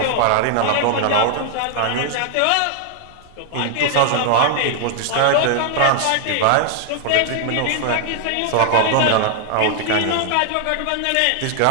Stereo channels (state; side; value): different; both; correlation 0.00